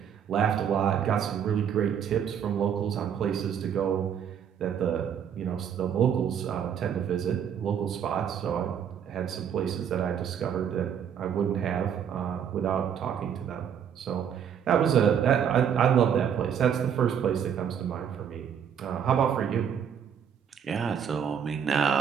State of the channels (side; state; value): left; quieter; 8.3 dB